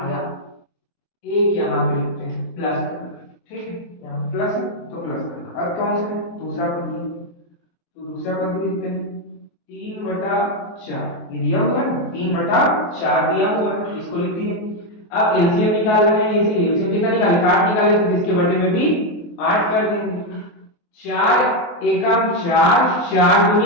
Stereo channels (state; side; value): late; right; 23 ms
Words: 1 यहाँ पे लिखते हैं प्लस करना, ठीक है, यहाँ प्लस है तो प्लस करना। अब कौन सा दूसरा पद, तो दूसरा पद भी लिखते हैं 3/4, ये दिया हुआ है 3/4 दिया हुआ है, इसको लिख दिए। अब एलसीएम निकाल रहे हैं, इसीलिए एलसीएम कितना निकाले 8 निकाले, तो इसके बटे में भी 8 कर देंगे, 4 एकम 4 4